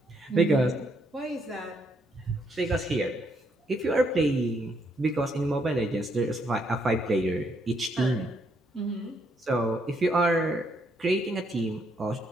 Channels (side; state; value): both; normal; correlation 0.74